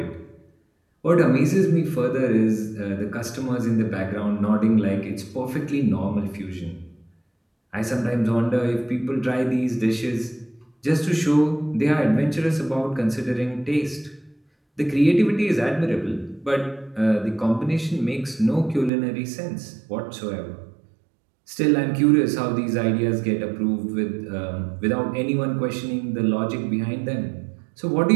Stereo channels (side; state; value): left; drops out; at 18.9 s